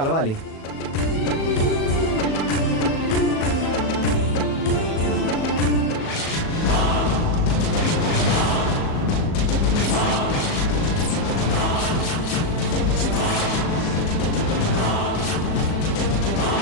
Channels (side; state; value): right; late; 37 ms